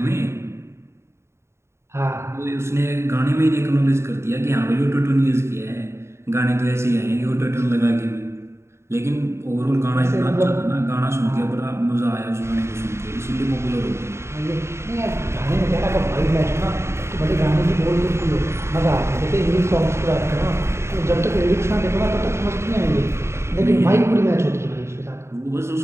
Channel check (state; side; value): late; left; 0.13 ms